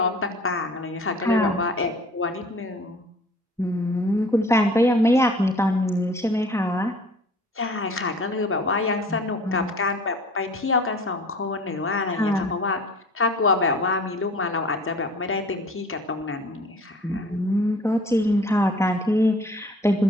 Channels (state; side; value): normal; both; correlation 0.48